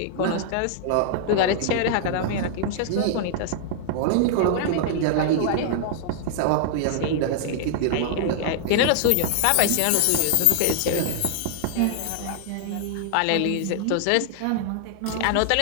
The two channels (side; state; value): both; different; correlation -0.01